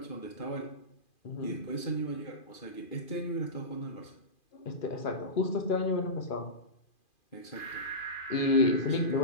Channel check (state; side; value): late; right; 2.4 ms